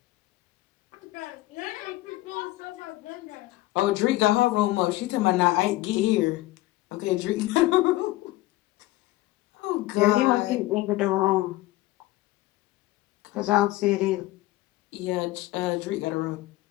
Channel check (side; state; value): right; quieter; 18.0 dB